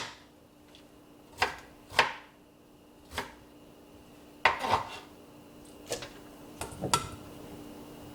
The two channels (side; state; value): both; identical; correlation 1.00